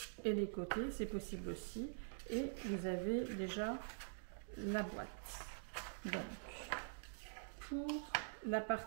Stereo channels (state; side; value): silent; left; digital silence